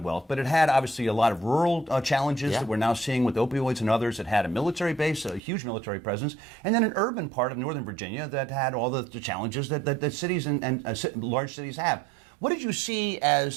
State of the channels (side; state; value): left; drops out; at 5.4 s